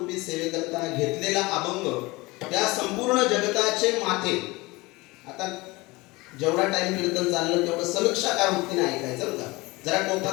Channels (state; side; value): quieter; right; 22.6 dB